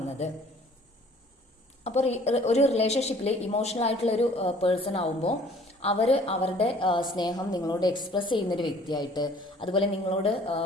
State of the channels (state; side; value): normal; both; correlation 0.54